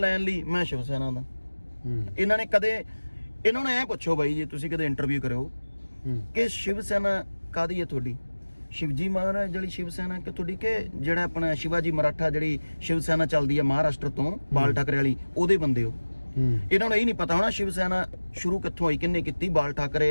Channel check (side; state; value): both; inverted; correlation -1.00